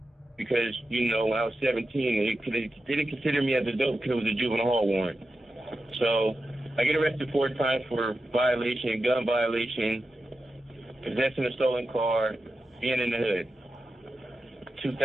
because, you know, when I was 17, they didn't consider me as an adult because it was a juvenile hall warrant. So I get arrested 4 times for violation, gun violation, possessing a stolen car, being in the hood.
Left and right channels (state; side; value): normal; both; correlation 0.90